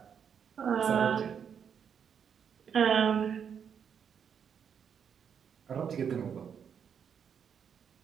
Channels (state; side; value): quieter; left; 7.6 dB